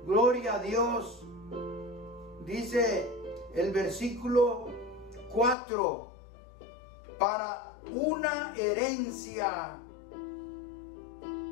gloria a Dios. Dice el versículo 4, para una herencia.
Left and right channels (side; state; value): right; drops out; at 5.6 s